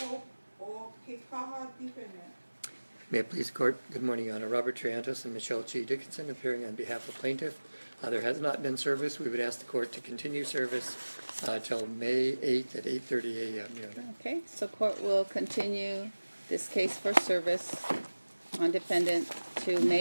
or Kekaha defendant. May it please the court, good morning, Your Honor. Robert Triantos and Michelle G. Dickinson appearing on behalf of plaintiff. There has not been service. We would ask the court to continue service till May 8th at 8:30 a.m., Your Honor. okay, so court will continue this case for service on defendant to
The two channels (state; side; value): inverted; both; correlation -1.00